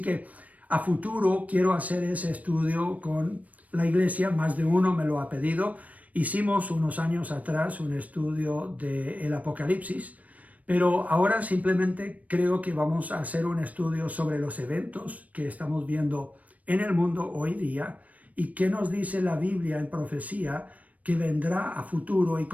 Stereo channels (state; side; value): late; left; 0.071 ms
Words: a futuro quiero hacer ese estudio con la iglesia, más de uno me lo ha pedido. Hicimos unos años atrás un estudio del Apocalipsis, pero ahora simplemente creo que vamos a hacer un estudio sobre los eventos que estamos viendo en el mundo hoy día y qué nos dice la Biblia en profecía que vendrá a futuro y